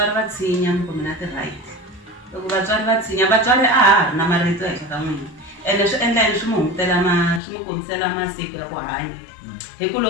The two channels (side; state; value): right; drops out; at 7.4 s